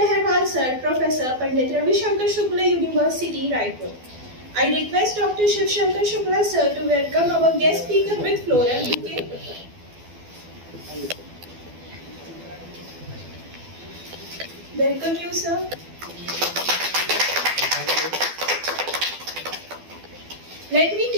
Sir, Professor, Pandit Ravi Shankar Shukla University, Raipur. I request Dr. Shiv Shankar Shukla Sir to welcome our guest speaker with floral bouquet. Welcome you, sir. Let me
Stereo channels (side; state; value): left; late; 12 ms